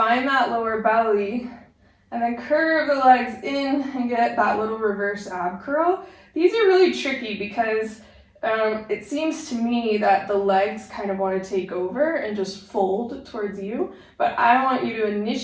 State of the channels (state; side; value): identical; both; correlation 1.00